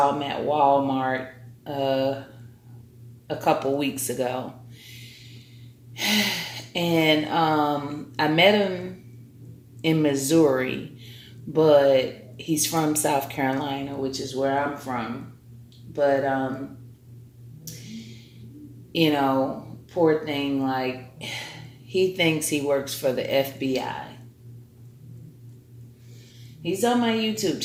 him at Walmart a couple weeks ago. And I met him in Missouri, but he's from South Carolina, which is where I'm from. But you know, poor thing, like he thinks he works for the FBI. He's on my YouTube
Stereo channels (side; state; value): both; identical; correlation 1.00